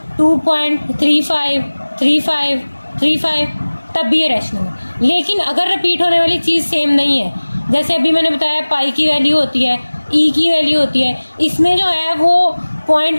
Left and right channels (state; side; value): inverted; both; correlation -1.00